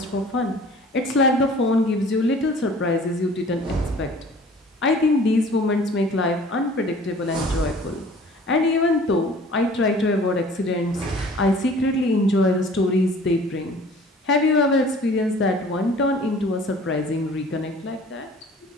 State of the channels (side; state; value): both; normal; correlation 0.48